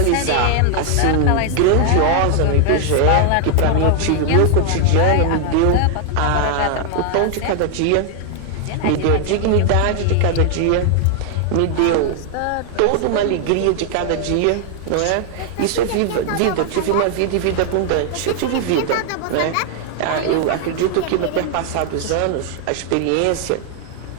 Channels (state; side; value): different; both; correlation 0.00